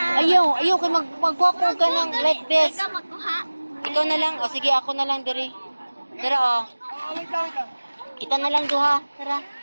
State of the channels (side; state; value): both; inverted; correlation -1.00